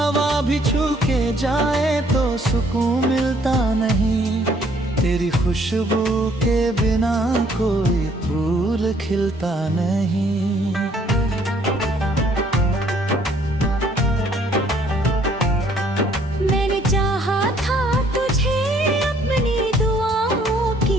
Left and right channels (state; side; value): normal; both; correlation 0.63